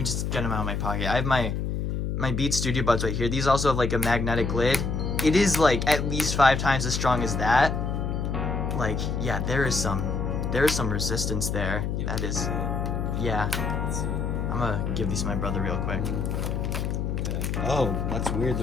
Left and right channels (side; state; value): left; noise; hum, 1 dB below the sound